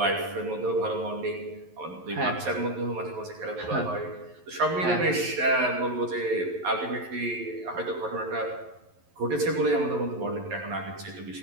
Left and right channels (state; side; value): late; left; 11 ms